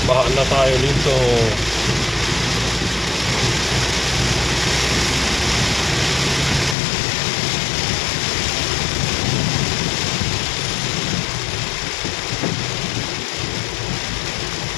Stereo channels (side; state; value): right; drops out; at 6.8 s